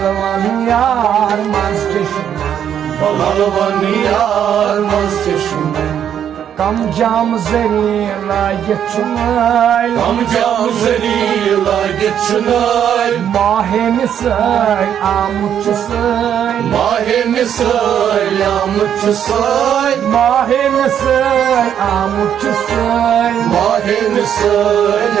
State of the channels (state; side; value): quieter; left; 9.3 dB